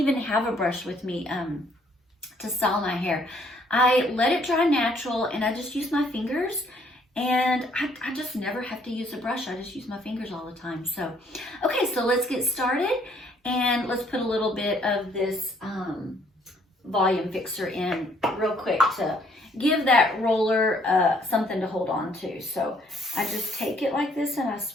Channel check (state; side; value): normal; both; correlation 0.64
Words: have a brush with me to style my hair. I let it dry natural, and I just use my fingers, and I just never have to use a brush. I just use my fingers all the time. So, okay, so let's get started, and let's put a little bit of this volume fixer in real quick to give that roller something to hold on to. So I just take it like this, and I